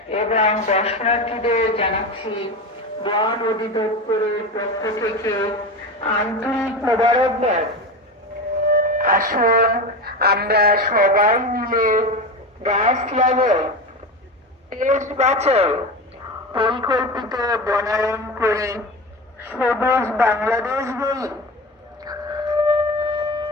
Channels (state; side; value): normal; both; correlation 0.24